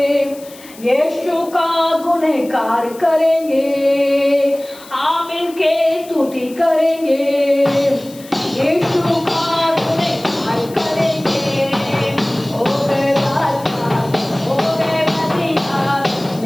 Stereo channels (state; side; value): noise; left; hiss, 20 dB below the sound